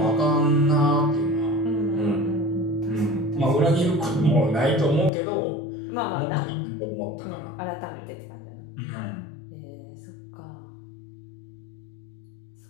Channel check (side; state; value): right; drops out; at 5.1 s